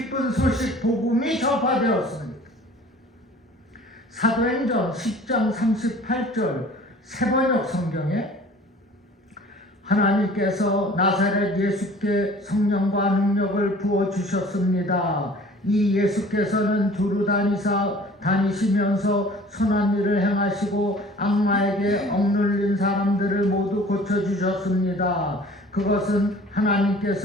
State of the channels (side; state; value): both; normal; correlation 0.48